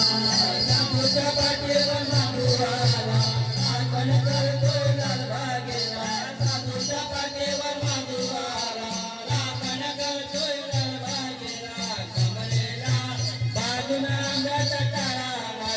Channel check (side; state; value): both; identical; correlation 1.00